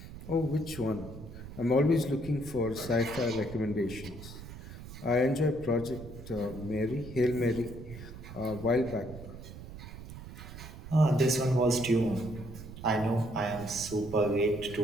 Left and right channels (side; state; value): right; noise; rumble, 13 dB below the sound